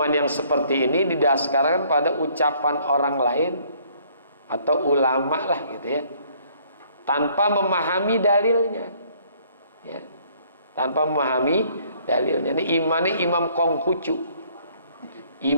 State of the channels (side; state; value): both; inverted; correlation -0.62